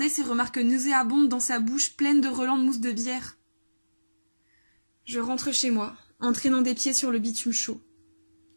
ses remarques nauséabondes dans sa bouche pleine de relents de mousse de bière. Je rentre chez moi, en traînant des pieds sur le bitume chaud.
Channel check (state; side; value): inverted; both; correlation -1.00